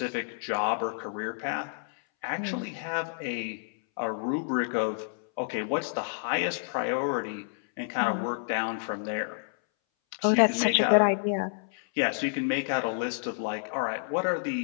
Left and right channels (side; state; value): right; silent; 58 dB below the other